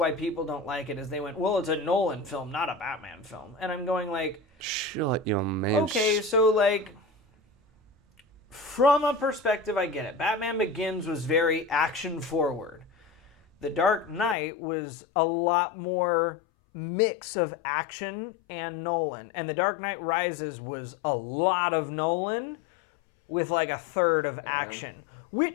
people don't like it, is they went, well, it's a Nolan film, not a Batman film. And I'm going like, shut your man. Okay, so like, from a perspective, I get it. Batman Begins was very action forward. The Dark Knight was a lot more mix of action and Nolan. And The Dark Knight Rises was a lot of Nolan with like a third of action,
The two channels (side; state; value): right; drops out; at 14.4 s